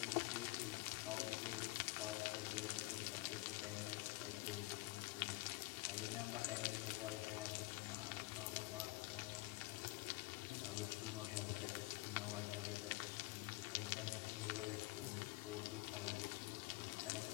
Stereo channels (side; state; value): right; quieter; 23.4 dB